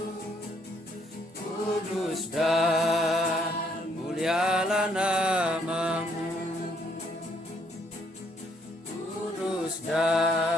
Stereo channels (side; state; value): both; normal; correlation 0.69